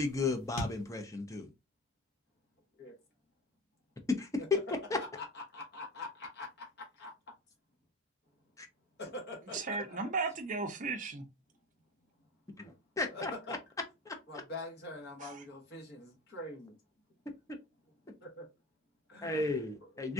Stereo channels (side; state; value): both; normal; correlation 0.32